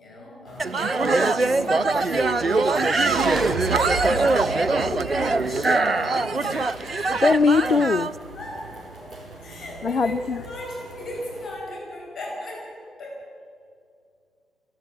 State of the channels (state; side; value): normal; both; correlation 0.77